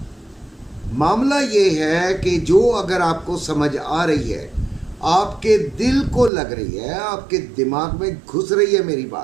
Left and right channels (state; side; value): drops out; left; at 6.3 s